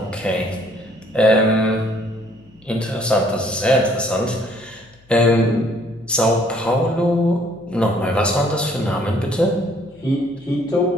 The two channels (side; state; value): left; noise; hum, 29 dB below the sound